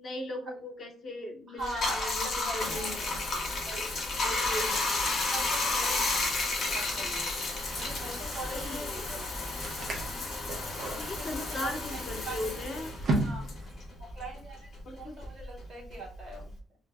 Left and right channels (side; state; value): both; normal; correlation 0.71